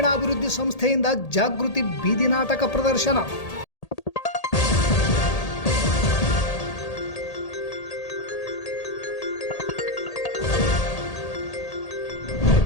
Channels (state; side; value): late; right; 1.8 ms